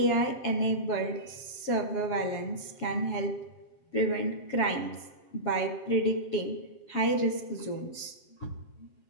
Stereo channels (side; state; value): right; late; 7.6 ms